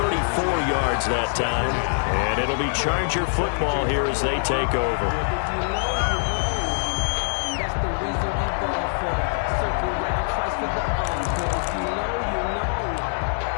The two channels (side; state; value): right; silent; 63 dB below the other